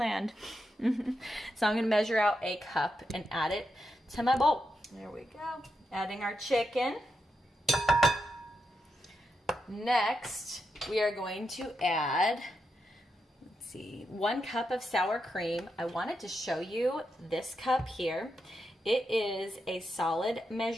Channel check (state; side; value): normal; both; correlation 0.85